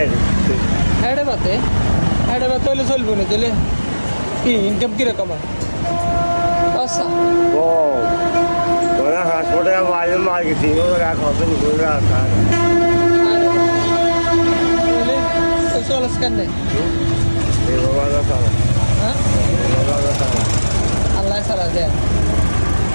হেঁটে বাতে হলে চলবো না তাহলে কি ইনকাম কীরকম হয় আচ্ছা কম হাসপাতালে মাঝে মার্কেটিং রাখা চলাস কেন হ্যাঁ আল্লাহ চালা দেয়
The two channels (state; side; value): inverted; both; correlation -1.00